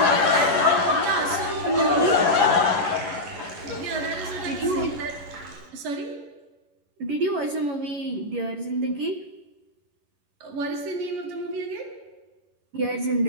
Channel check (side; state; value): left; late; 11 ms